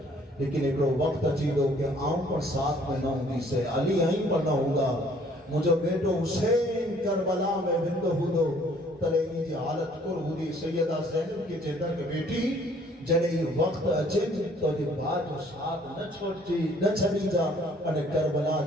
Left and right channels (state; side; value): normal; both; correlation 0.59